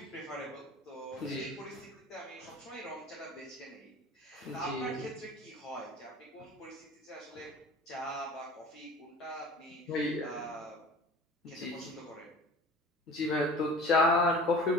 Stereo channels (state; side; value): normal; both; correlation 0.41